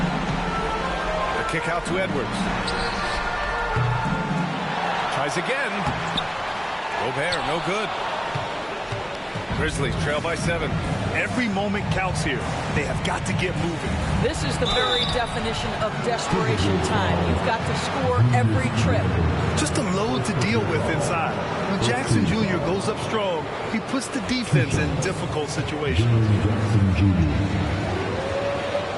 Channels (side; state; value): both; identical; correlation 1.00